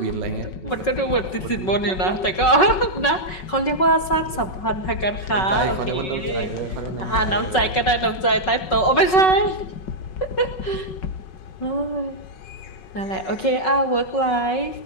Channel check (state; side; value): late; right; 5.4 ms